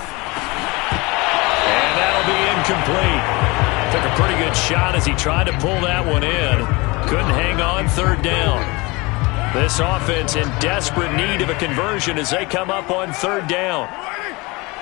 And that'll be incomplete. Took a pretty good shot as he tried to pull that one in. Couldn't hang on 3rd down. This offense in desperate need of a conversion as they come up on 3rd down.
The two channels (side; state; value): right; quieter; 24.8 dB